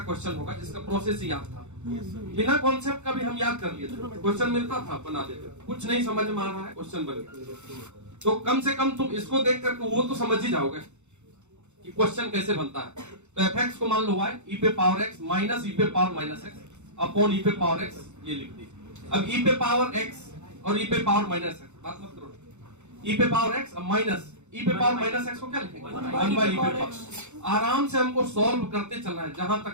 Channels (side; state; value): left; late; 0.83 ms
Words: क्वेश्चन होगा जिसका प्रोसेस ही याद था, बिना कॉन्सेप्ट का भी हम याद कर लिए थे, क्वेश्चन मिलता था बना देते, कुछ नहीं समझ में आ रहा है क्वेश्चन बन गया। तो कम से कम तुम इसको देख करके वो तो समझ ही जाओगे कि क्वेश्चन कैसे बनता है। तो f(x) को मान लो y e⁻x minus e⁻−x upon e⁻x, ये लिख दी। अब e⁻x और e⁻−x बात मत करो, e⁻x माइनस e⁻−x को क्या लिखेंगे, 1/e⁻। आराम से हमको सॉल्व करते चलना है, जहां